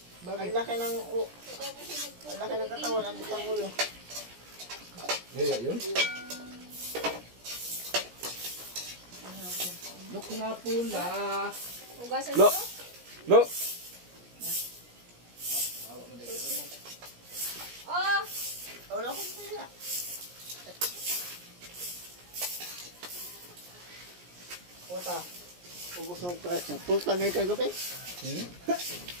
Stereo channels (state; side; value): late; left; 17 ms